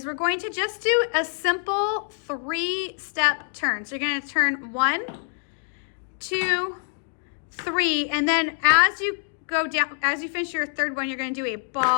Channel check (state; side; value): silent; right; 57 dB below the other